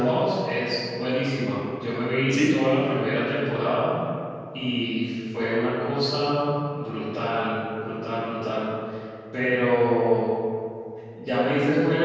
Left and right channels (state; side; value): identical; both; correlation 1.00